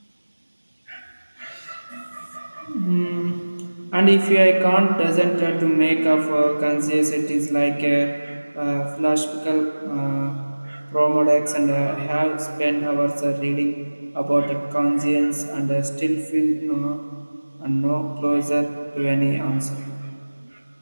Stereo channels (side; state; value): both; inverted; correlation -1.00